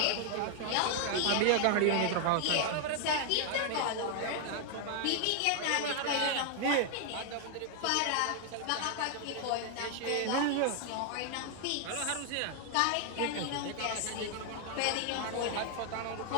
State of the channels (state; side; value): different; both; correlation 0.00